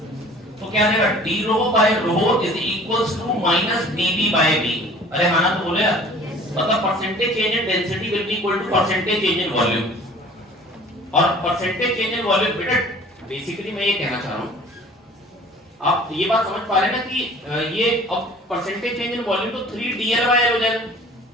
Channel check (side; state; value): both; normal; correlation 0.48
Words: तो क्या देगा d rho by rho is equals to minus dv by v। अरे हाँ ना तो बोले यार मतलब percentage change in density will be equal to percentage change in volume. और परसेंटेज चेंज इन वॉल्यूम बेटा बेसिकली मैं ये कहना चाह रहा हूं आप ये बात समझ पा रहे हैं ना कि ये अब परसेंटेज चेंज इन वॉल्यूम तो 3dl/l हो जाएगा।